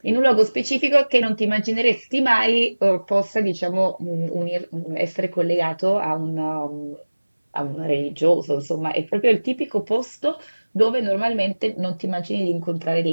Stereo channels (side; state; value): both; inverted; correlation -1.00